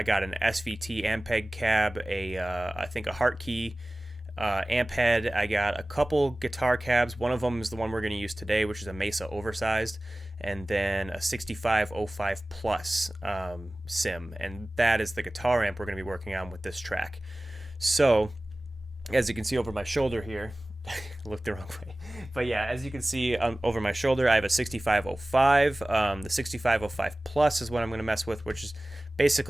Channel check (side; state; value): both; normal; correlation 0.98